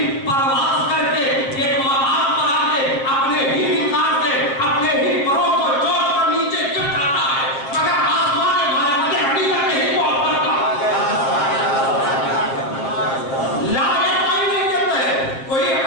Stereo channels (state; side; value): late; right; 7.4 ms